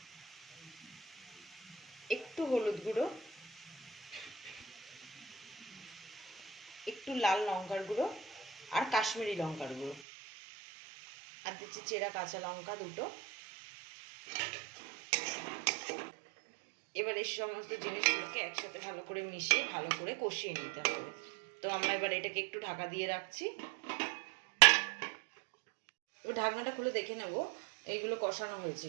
একটু হলুদ গুঁড়ো, একটু লাল লঙ্কার গুঁড়ো আর কাশ্মীরি লঙ্কার গুঁড়ো, আর দিচ্ছি চেরা কাঁচা লঙ্কা দুটো। এবার এই সমস্ত জিনিসগুলোকে একসাথে ভালো করে মিশিয়ে ভালো করে কষিয়ে নিতে হবে। তো আমরা এবার এটাকে একটু ঢাকা দিয়ে রাখছি। এবার ঢাকনাটা খুলে দেখে নেব এইগুলো কষানো হয়েছে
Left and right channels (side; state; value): left; drops out; at 10.0 s